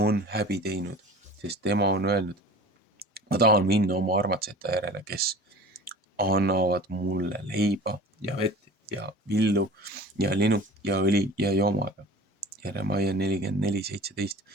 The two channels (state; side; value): normal; both; correlation 0.40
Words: häbi teinud, sest tema on öelnud, ma tahan minna oma armatsete järele, kes annavad mulle leiba ja vett ja villu ja linu ja õli ja joomaga. Jeremaia